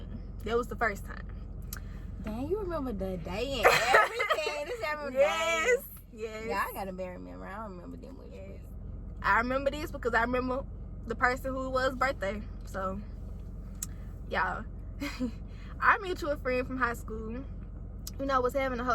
That was the first time. Dang, you remember the day and everything. This every Yes. Yeah, I got a bad memory. I don't remember them with you. I remember this because I remember the person who it was birthday. So, y'all, our mutual friend from high school, was having a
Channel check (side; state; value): both; identical; correlation 1.00